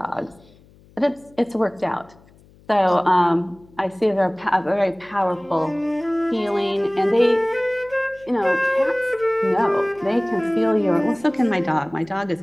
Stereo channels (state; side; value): noise; left; hum, 28 dB below the sound